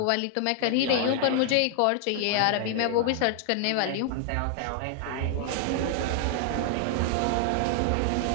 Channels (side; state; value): both; different; correlation 0.00